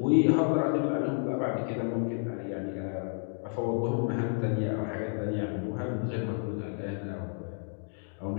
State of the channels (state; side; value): silent; right; 57 dB below the other